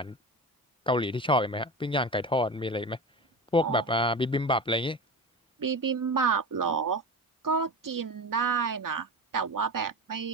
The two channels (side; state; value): both; normal; correlation 0.27